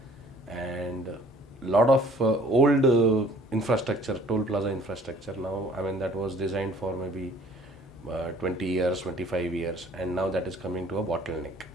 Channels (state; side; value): normal; both; correlation 0.55